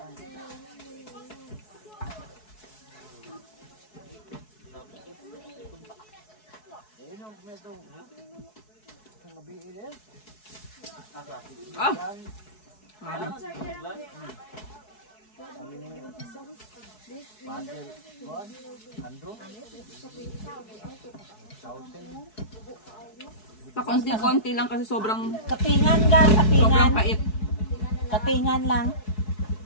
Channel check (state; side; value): late; right; 4.7 ms